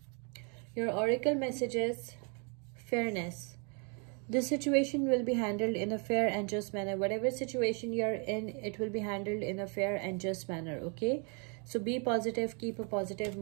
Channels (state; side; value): quieter; left; 36.6 dB